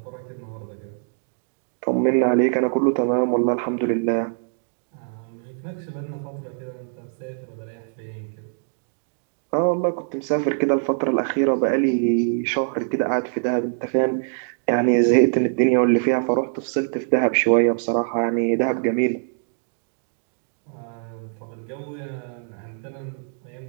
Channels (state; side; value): silent; left; digital silence